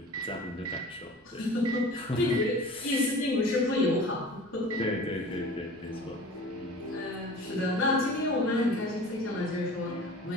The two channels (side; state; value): both; normal; correlation 0.41